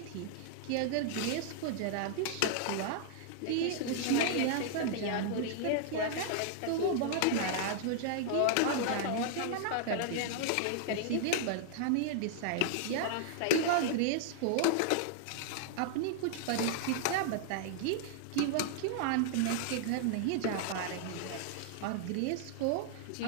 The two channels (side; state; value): both; different; correlation -0.01